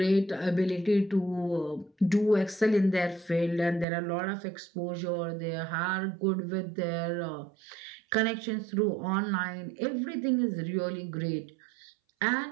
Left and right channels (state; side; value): drops out; left; at 3.9 s